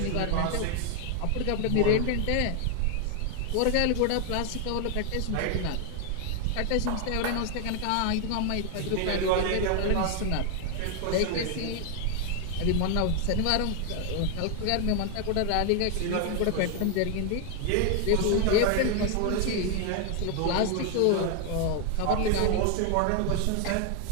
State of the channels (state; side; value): different; both; correlation 0.00